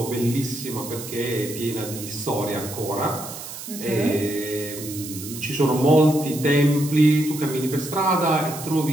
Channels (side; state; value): right; noise; hiss, 11 dB below the sound